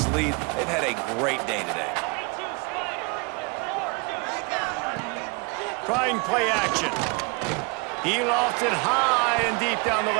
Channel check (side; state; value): left; quieter; 30.2 dB